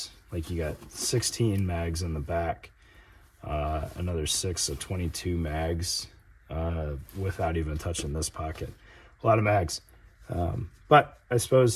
Like you got 16 mags in the back, another 6, so 22 mags, without even touching this pocket. A lot of mags. But I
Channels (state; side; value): identical; both; correlation 1.00